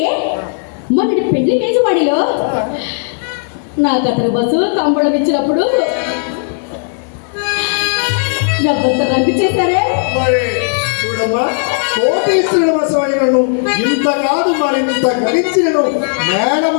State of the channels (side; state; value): right; silent; digital silence